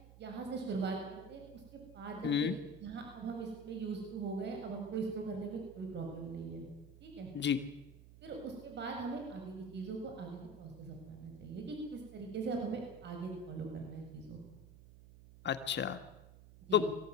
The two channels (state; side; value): noise; right; hum, 17 dB below the sound